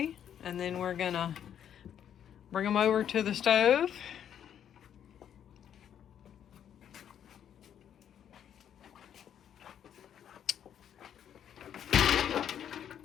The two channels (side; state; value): right; quieter; 9.4 dB